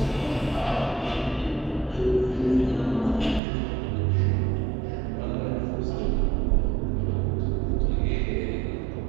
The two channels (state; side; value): drops out; left; at 3.4 s